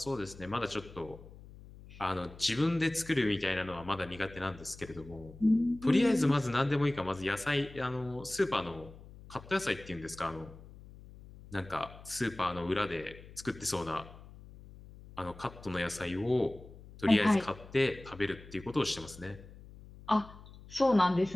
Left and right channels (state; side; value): noise; left; hum, 18 dB below the sound